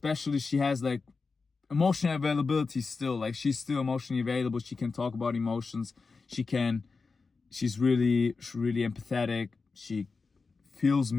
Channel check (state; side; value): quieter; right; 4.4 dB